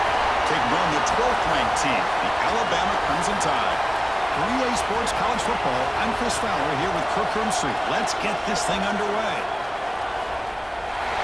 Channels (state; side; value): identical; both; correlation 1.00